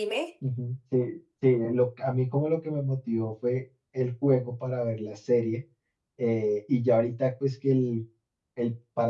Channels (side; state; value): both; identical; correlation 1.00